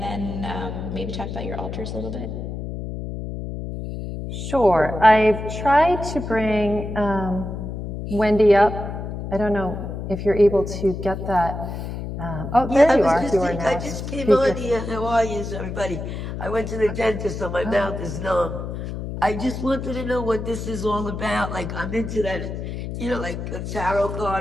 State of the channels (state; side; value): noise; left; hum, 6 dB below the sound